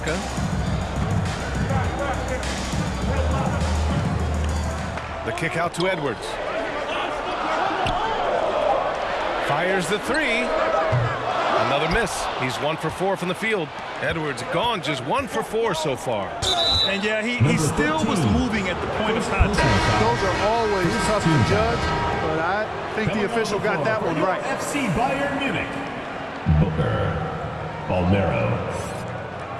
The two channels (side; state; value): both; identical; correlation 1.00